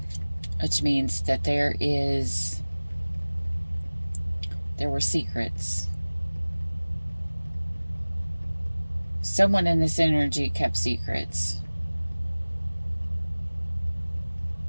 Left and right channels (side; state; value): both; inverted; correlation -1.00